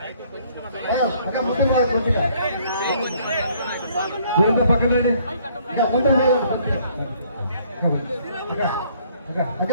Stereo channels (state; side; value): inverted; both; correlation -0.62